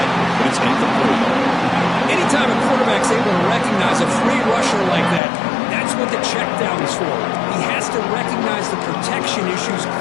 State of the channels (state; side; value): drops out; right; at 5.2 s